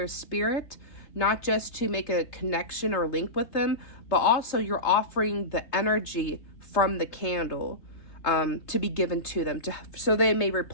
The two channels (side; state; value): right; late; 3.3 ms